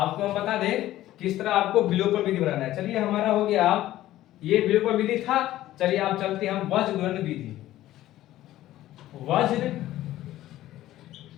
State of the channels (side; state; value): right; quieter; 14.5 dB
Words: हम बता दें किस तरह आपको विलोपन विधि बनाना है। चलिए हमारा हो गया, ये विलोपन विधि था। चलिए आप चलते हैं हम वज्र गुणन विधि। वज्र